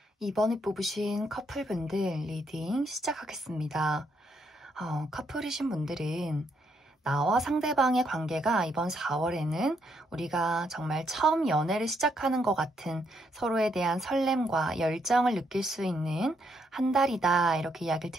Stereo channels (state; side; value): normal; both; correlation 0.75